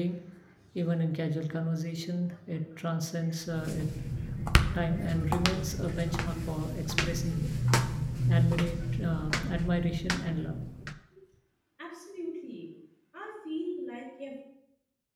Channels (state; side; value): identical; both; correlation 1.00